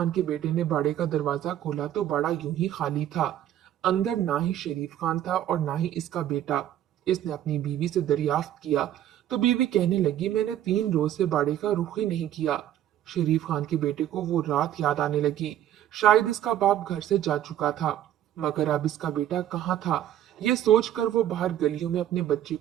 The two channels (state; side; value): quieter; left; 11.6 dB